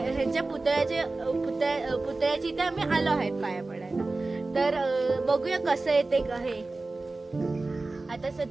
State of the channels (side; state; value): left; quieter; 3.3 dB